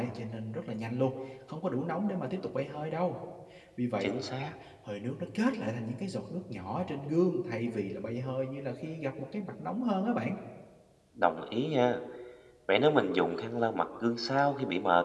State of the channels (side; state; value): both; identical; correlation 1.00